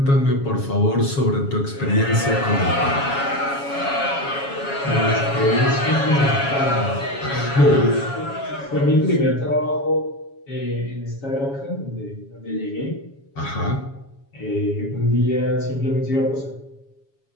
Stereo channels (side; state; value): right; late; 7.2 ms